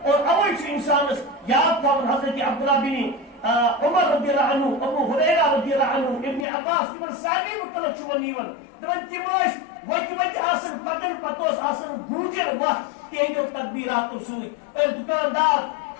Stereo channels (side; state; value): right; drops out; at 6.5 s